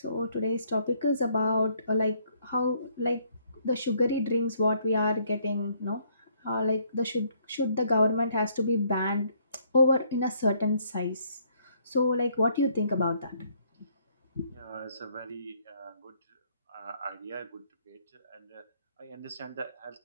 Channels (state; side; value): inverted; both; correlation -0.67